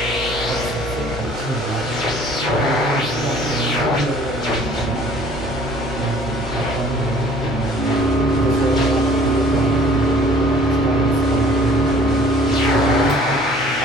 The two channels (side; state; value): both; normal; correlation 0.53